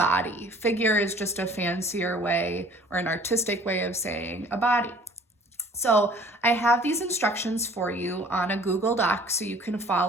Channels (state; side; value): normal; both; correlation 0.51